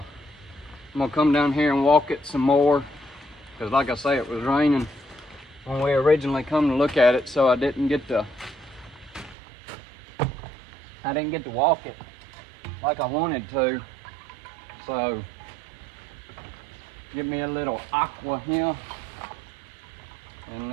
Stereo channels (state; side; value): drops out; left; at 9.3 s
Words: gonna come down here and walk it some more, because like I say, it was raining when we originally come to look at it, so I didn't get to walk it like I wanted to. So give me a little aqua here, and